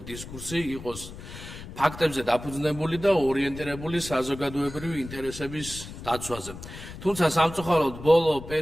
დისკურსი იყოს ფაქტებზე დაფუძნებული და ორიენტირებული საზოგადოებრივი ინტერესების დაცვაზე. თუმცა სამწუხაროდ ბოლო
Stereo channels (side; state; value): left; noise; rumble, 13 dB below the sound